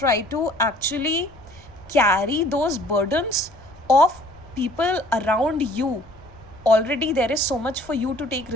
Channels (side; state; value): left; noise; rumble, 24 dB below the sound